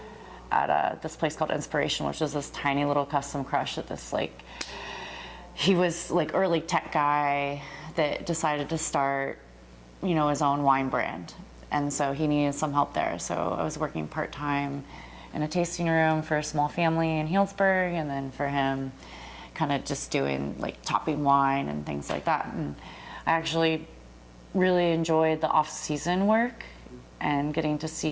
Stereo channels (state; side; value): identical; both; correlation 1.00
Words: at this place called Inspiration, which is this tiny little custom crush at this he was early tech guy that decided to start, his own wine brand. And so he needed some help there. So I was working part-time in a tasting room for a small family in Healdsburg, and then for him kind of just doing like topping wine and things like that. And I actually really enjoyed the off-season work and getting to